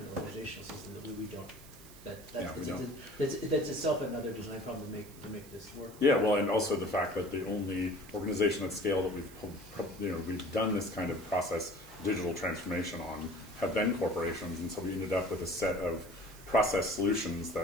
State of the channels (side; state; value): right; noise; hiss, 20 dB below the sound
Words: organizational system that we don't. That's itself another design problem to make this work. Yeah, well, and also the fact that the only organization at scale that we've done this kind of process, digital transformation on, have been corporations, and so we ended up with a set of process solutions